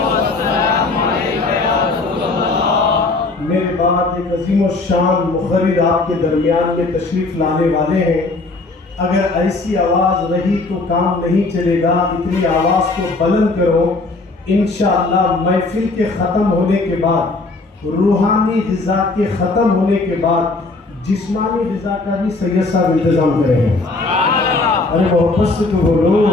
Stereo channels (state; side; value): quieter; right; 3.4 dB